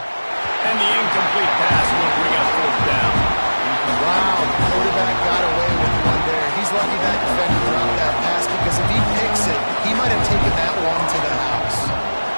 And the incomplete pass will bring up 4th down. Wow, the quarterback got away with one there. He's lucky that defender dropped that pass because if he picks it, he might have taken that one to the house.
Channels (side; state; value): both; inverted; correlation -1.00